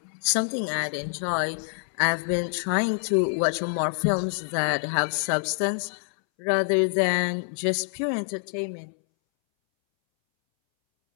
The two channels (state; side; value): silent; right; 61 dB below the other